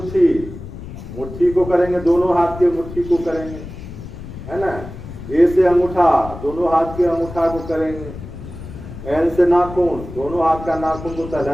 मुट्ठी को करेंगे, दोनों हाथ के मुट्ठी को करेंगे, है ना? ए से अंगूठा, दोनों हाथ के अंगूठा को करेंगे। एन से नाखून, दोनों हाथ का नाखून को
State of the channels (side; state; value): left; noise; rumble, 12 dB below the sound